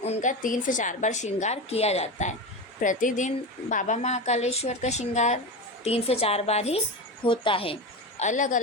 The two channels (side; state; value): both; normal; correlation 0.22